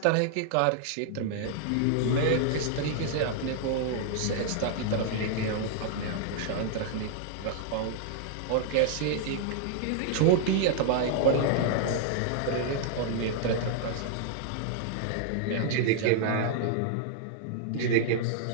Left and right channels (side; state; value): both; different; correlation 0.00